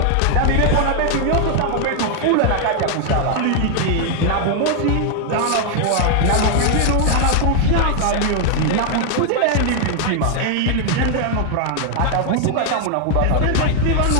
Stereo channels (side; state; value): both; different; correlation 0.00